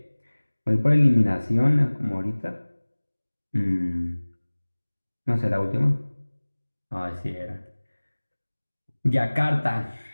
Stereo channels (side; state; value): both; inverted; correlation -1.00